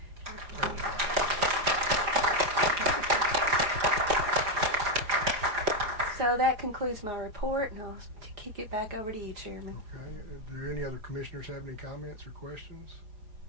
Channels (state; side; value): late; left; 4.8 ms